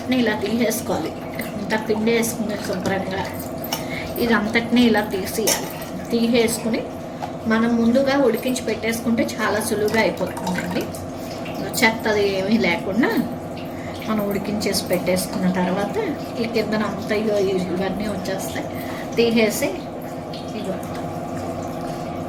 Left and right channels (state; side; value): identical; both; correlation 1.00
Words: ఇలా తీసేసుకోవాలి. ఇంత పిండి వేసుకుని శుభ్రంగా ఇదంతటిని ఇలా తీసేసుకుని మనం ముందుగా ఉడికించి పెట్టేసుకుంటే చాలా సులువుగా అయిపోతుందండి. చెత్తది ఏమీ లేకుండా మనం ఉడికించేసి పెట్టేసుకున్న తర్వాత ఈ కిందన అంతా ఇవన్నీ వచ్చేస్తాయి. తీసేసి ఇగో